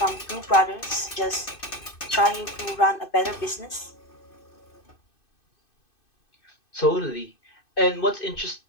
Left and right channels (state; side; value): late; right; 2.6 ms